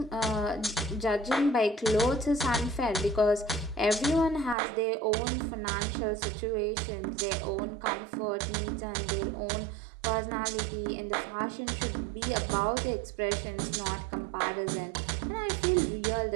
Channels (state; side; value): drops out; left; at 4.5 s